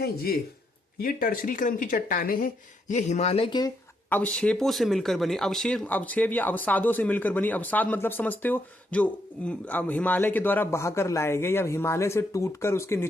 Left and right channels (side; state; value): both; normal; correlation 0.77